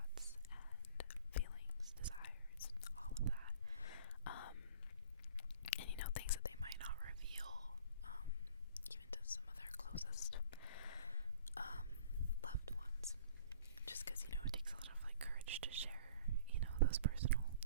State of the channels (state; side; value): inverted; both; correlation -0.49